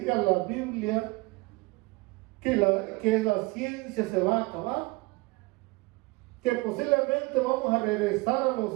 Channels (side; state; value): left; quieter; 24.3 dB